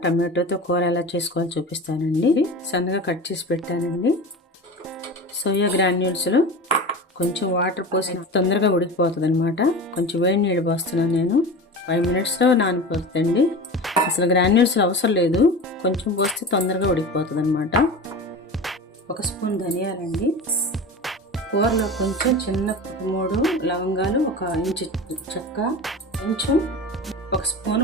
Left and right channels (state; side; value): normal; both; correlation 0.31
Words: టమాటోతో కూర ఎలా చేసుకోవాలో చూపిస్తానండి. సన్నగా కట్ చేసి పెట్టానండి. సోయా గ్రాన్యూల్స్లో కొంచెం వాటర్ పోసి తొందరగా ఉడికిపోతుంది అనమాట. కొంచెం వేడి నీళ్ళు పోస్తున్నాను నేను. 5 minutesలో నానిపోతుందండి. అసలు గ్రాన్యూల్స్లో అవసరం లేదు, కొంచెం పోస్తే తొందరగా ఉడికిపోతుంది అనమాట. 1 స్పూన్ ధనియాలండి. కూరలో కొంచెం చిన్న 3 లవంగాలు, 1 ఇంచు చెక్క, కొంచెం 1 స్పూన్